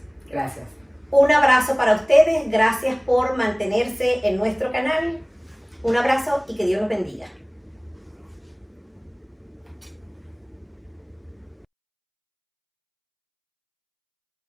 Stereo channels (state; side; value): identical; both; correlation 1.00